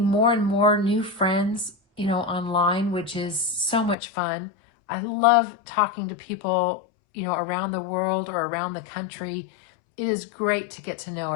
more and more new friends, you know, online, which is so much fun. I love talking to people, you know, around the world or around the country. It is great to get to know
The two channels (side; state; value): right; drops out; at 4.0 s